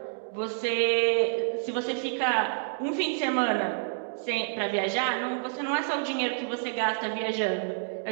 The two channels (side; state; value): left; silent; digital silence